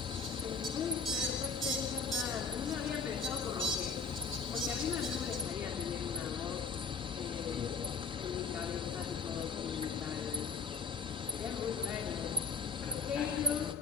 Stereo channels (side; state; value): right; quieter; 5.0 dB